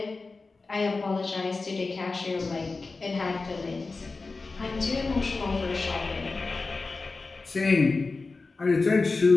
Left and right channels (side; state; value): right; quieter; 3.9 dB